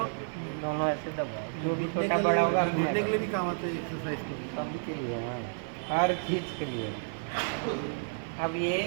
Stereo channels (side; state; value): left; silent; 57 dB below the other